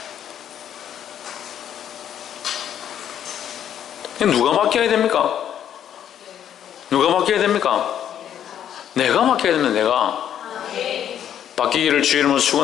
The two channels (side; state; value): right; quieter; 9.9 dB